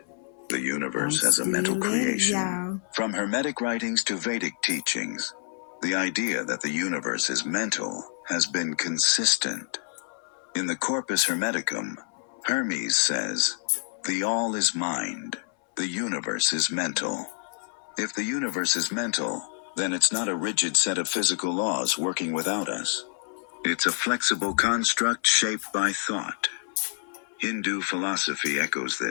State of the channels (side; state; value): right; silent; 60 dB below the other